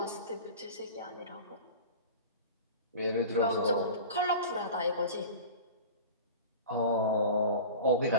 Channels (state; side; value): inverted; both; correlation -0.35